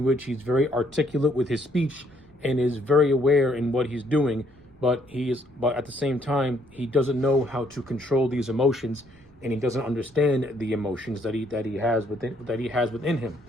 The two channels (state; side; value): noise; right; rumble, 27 dB below the sound